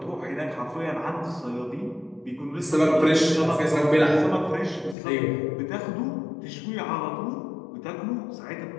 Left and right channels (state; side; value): drops out; right; at 5.0 s